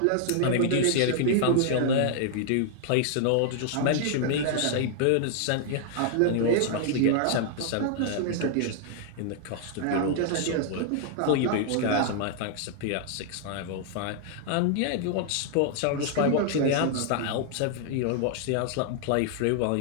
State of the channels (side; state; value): both; different; correlation -0.01